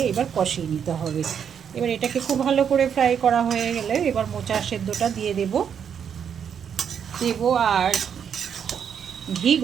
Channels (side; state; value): left; quieter; 7.9 dB